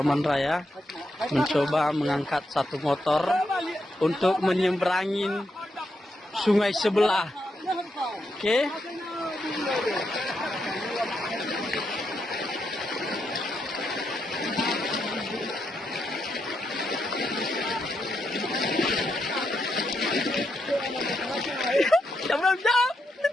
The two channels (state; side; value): normal; both; correlation 0.82